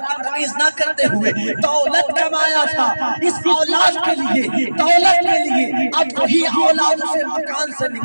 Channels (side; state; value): both; inverted; correlation -1.00